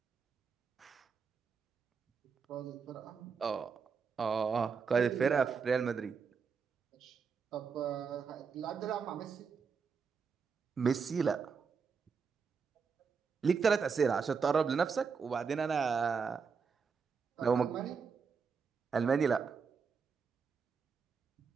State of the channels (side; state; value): left; quieter; 5.7 dB